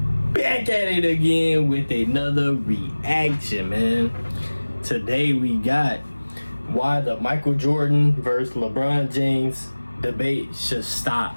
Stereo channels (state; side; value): inverted; both; correlation -1.00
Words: back at it again with another reaction, man. Today we got why the Michael Jordan versus LeBron James debate should stop.